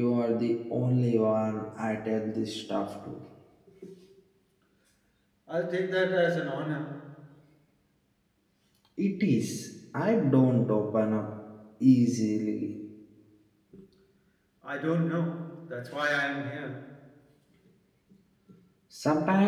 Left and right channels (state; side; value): identical; both; correlation 1.00